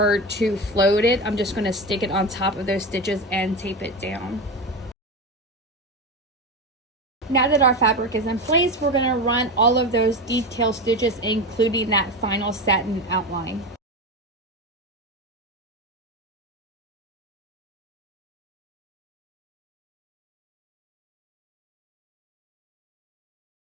to float it. I'm just going to stick it on top of those stitches and tape it down. Now that our fabric is in place, we're going to run all of those detail stitches, including that final satin outline.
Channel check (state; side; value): normal; both; correlation 0.21